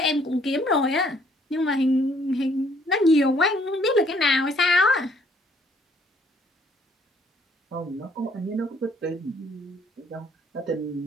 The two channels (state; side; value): normal; both; correlation 0.64